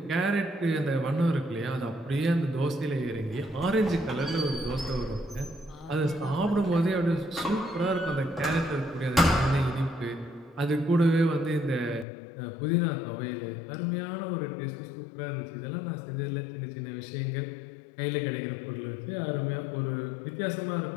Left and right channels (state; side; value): drops out; right; at 12.1 s